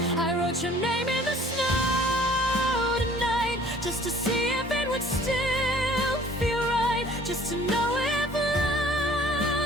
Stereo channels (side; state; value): both; normal; correlation 0.53